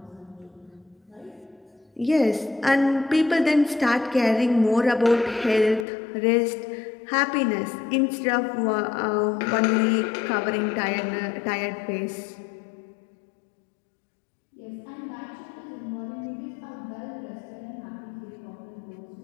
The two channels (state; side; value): drops out; right; at 5.9 s